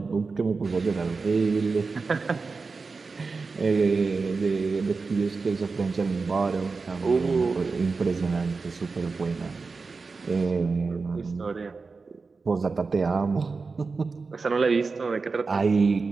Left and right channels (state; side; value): quieter; left; 4.3 dB